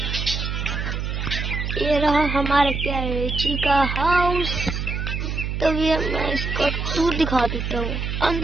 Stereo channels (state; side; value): noise; right; hum, 3 dB below the sound